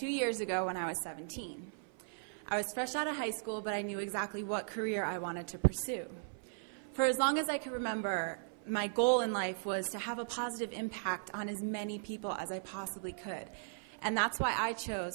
years ago when I was 17. I was fresh out of high school, but I knew exactly what career I wanted to pursue. For as long as I could remember, my goal in life was to have a positive impact on as many people as I possibly could. And that's why I chose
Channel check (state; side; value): silent; left; 53 dB below the other